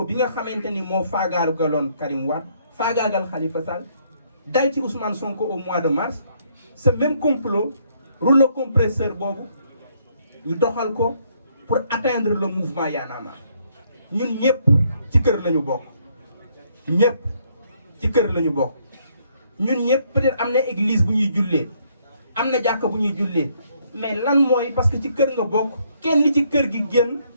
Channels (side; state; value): both; inverted; correlation -0.69